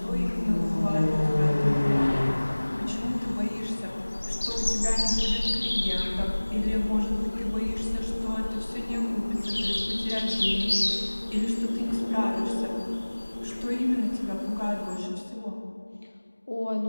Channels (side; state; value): both; inverted; correlation -1.00